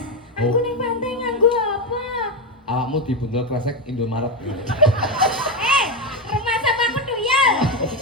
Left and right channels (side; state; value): both; normal; correlation 0.10